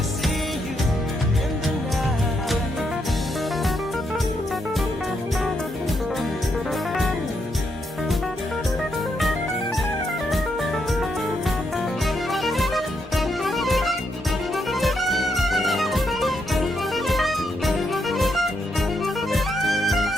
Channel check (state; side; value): normal; both; correlation 0.79